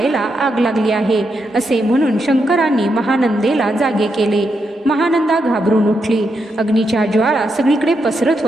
आग लागली आहे असे म्हणून शंकरांनी महानंदेला जागे केले. महानंदा घाबरून उठली. अग्नीच्या ज्वाळा सगळीकडे पसरत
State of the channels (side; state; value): both; normal; correlation 0.82